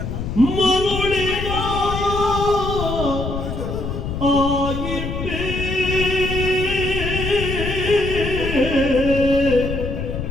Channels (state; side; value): noise; left; rumble, 5 dB below the sound